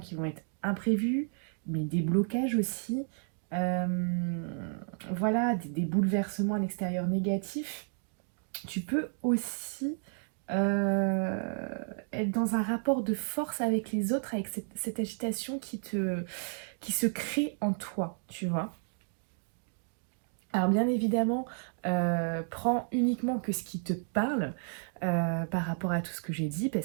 vont être imprévus, mais des blocages aussi, euh, voilà, des bouleversements à l'extérieur négatifs. Tu peux aussi euh, être dans un rapport de force avec les autres, avec cette agitation qui se crée en toi, tu vois. Alors bien évidemment, prends uniquement que ce qui te parle par rapport à tout ce que j'ai dit,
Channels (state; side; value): silent; left; 56 dB below the other